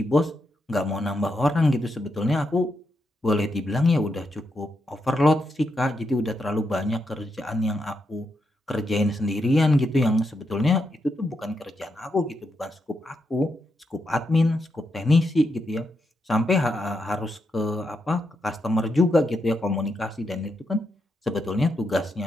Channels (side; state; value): both; normal; correlation 0.83